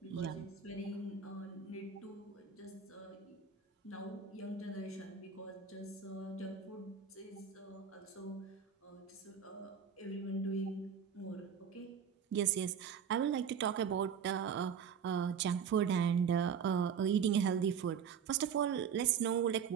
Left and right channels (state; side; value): quieter; left; 7.2 dB